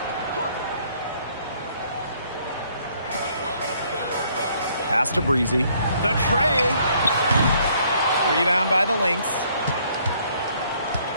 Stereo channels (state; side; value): inverted; both; correlation -0.65